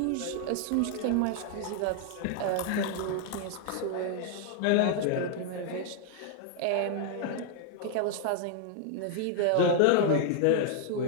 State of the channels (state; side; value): different; both; correlation 0.00